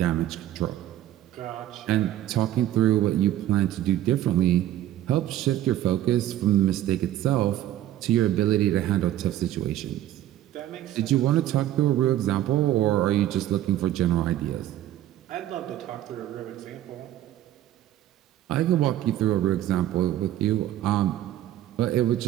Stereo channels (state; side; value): quieter; left; 13.0 dB